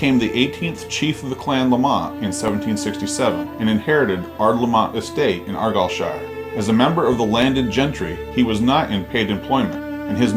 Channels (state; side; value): identical; both; correlation 1.00